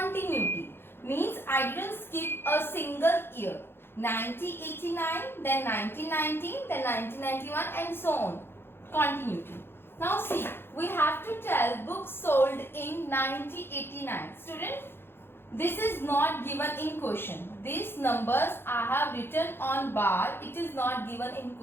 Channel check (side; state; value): right; late; 0.11 ms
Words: Means I didn't skip a single year. 1989, then 1919, then 1991 and so on. Continuity. Now see, we have to tell books sold in 1989. Student, this is not given in question. These numbers I have written on bar. It is not given in